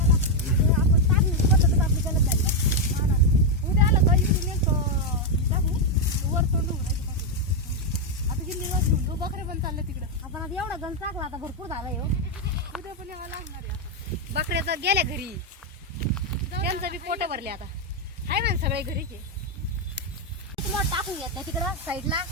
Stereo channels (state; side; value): normal; both; correlation 0.02